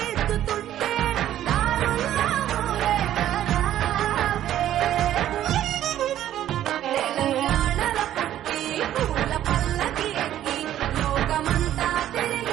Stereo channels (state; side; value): quieter; left; 12.0 dB